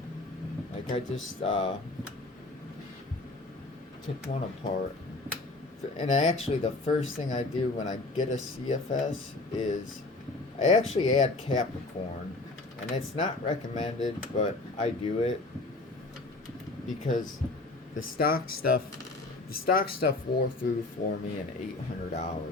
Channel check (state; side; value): quieter; right; 3.1 dB